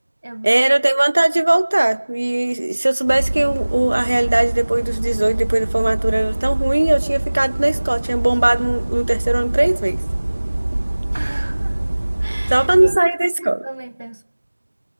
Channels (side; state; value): both; inverted; correlation -1.00